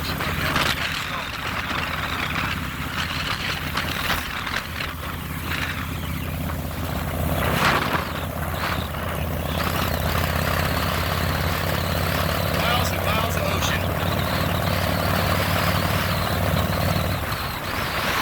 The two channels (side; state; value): both; identical; correlation 1.00